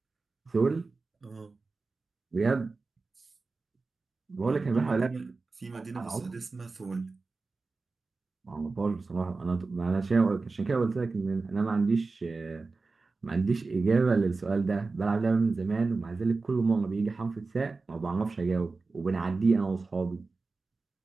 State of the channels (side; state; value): left; quieter; 3.9 dB